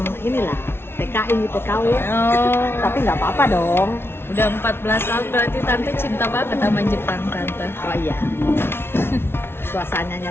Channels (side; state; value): right; late; 0.12 ms